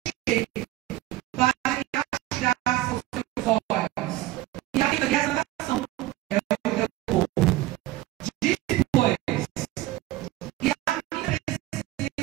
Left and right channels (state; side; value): quieter; left; 16.4 dB